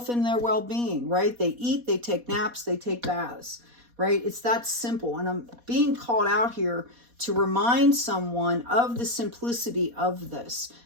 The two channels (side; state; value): left; late; 4.2 ms